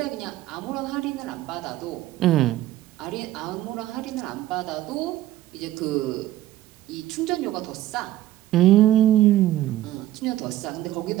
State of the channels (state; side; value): quieter; left; 14.4 dB